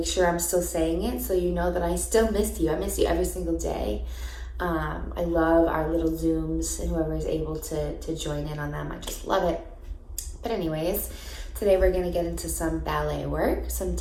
sure I'm still saying it so you know that I still miss you. I miss you every single day. I love our little Zooms and whoever is able to join in on them. I just love it. But anyways, today we're going to get into some ballet work, some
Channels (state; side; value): identical; both; correlation 1.00